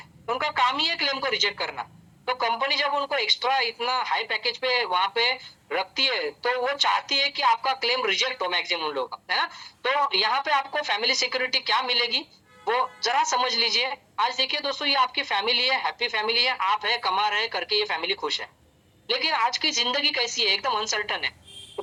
उनका काम ही है क्लेम को रिजेक्ट करना। तो कंपनी जब उनको एक्स्ट्रा इतना हाई पैकेज पे वहां पे रखती है, तो वो चाहती है कि आपका क्लेम रिजेक्ट हो मैक्सिमम लोग, है ना। तो यहाँ पे आपको फैमिली सिक्योरिटी क्या मिलेगी वो जरा समझ लीजिए। आज देखिए दोस्तों, ये आपकी फैमिली है, हैप्पी फैमिली है, आप है कमा रहे करके ये फैमिली खुश है। लेकिन आज की जिंदगी कैसी है? एकदम अनसर्टन है।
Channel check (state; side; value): identical; both; correlation 1.00